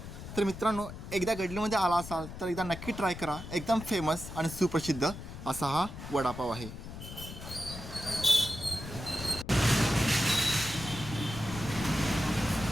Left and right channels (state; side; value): noise; left; rumble, 11 dB below the sound